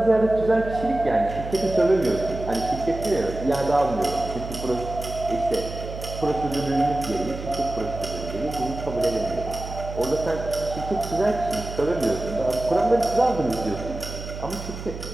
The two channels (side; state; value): right; noise; hum, 9 dB below the sound